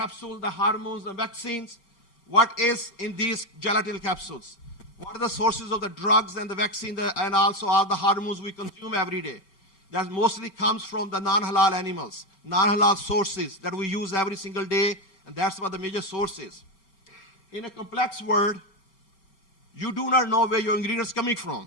the hormones, the vaccines. What is in these gelatin capsules? What are the sources of the drugs and the vaccine and also all the hormones we consume every day? That mostly comes from the non-halal animals, non-halal sources that we use every single day, and that's what the major source is. In a complex world, You do not know where your ingredients are coming from.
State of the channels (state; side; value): late; right; 5.2 ms